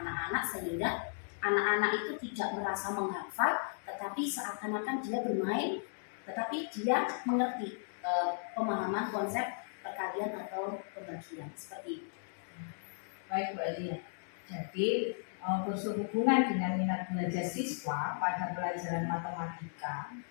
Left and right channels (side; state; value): right; silent; digital silence